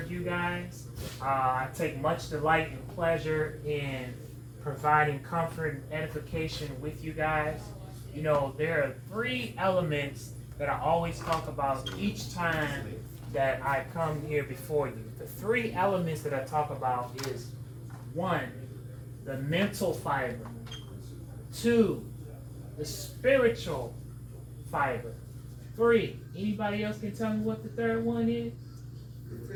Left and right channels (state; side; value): identical; both; correlation 1.00